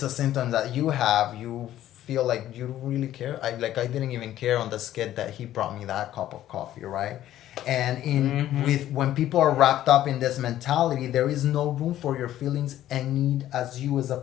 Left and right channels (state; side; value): quieter; right; 12.9 dB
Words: a symptom that you have, you feel like you don't really care. I didn't even care on the skit that he brought me that cup of coffee, right? And with when people are wrapped up in this mentality, there is no room for your feelings and need as you as a